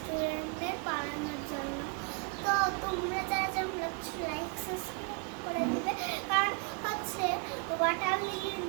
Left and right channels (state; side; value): quieter; left; 34.3 dB